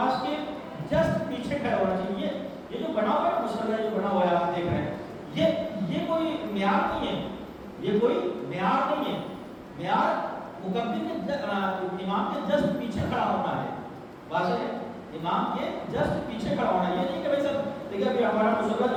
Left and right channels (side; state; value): both; identical; correlation 1.00